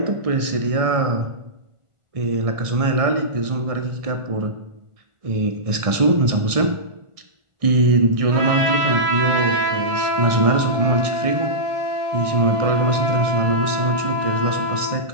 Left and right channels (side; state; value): left; late; 1.6 ms